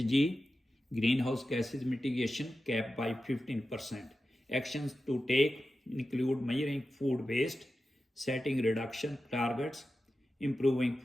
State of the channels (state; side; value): normal; both; correlation 0.92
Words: greenhouse gases mitigation cap by 15%. Actions to take include measuring food waste, setting reduction targets, improving